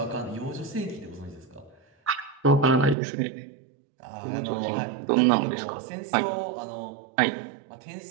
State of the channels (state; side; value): drops out; left; at 3.0 s